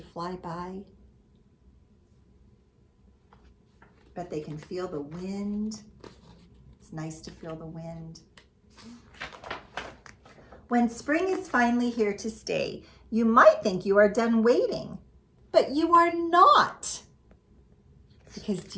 fly by. Bet they can feel the wind. It's nice to feel the wind. When spring is finally here to stay, you might think you are done waiting, but you are not. Because do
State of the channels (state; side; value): identical; both; correlation 1.00